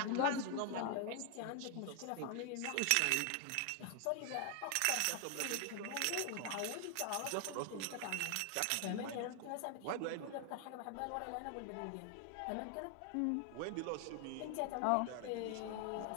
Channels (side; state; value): both; different; correlation 0.00